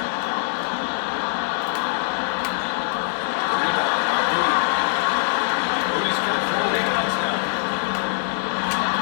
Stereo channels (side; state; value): right; silent; digital silence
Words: The rebound by Moody. Moody's got 4 rebounds now.